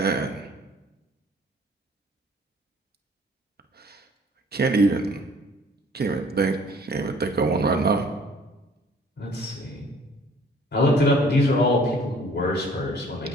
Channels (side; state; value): both; normal; correlation 0.55